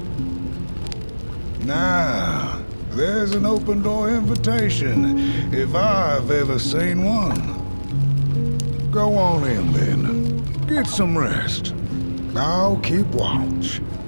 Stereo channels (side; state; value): both; inverted; correlation -1.00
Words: Now, there's an open door invitation, if I've ever seen one. Go on in then. Get some rest. I'll keep watch.